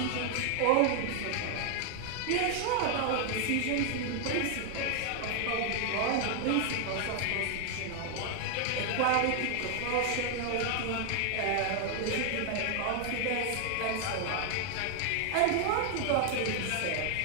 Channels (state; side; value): different; both; correlation 0.00